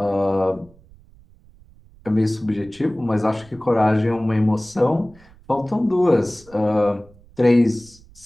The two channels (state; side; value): noise; right; rumble, 26 dB below the sound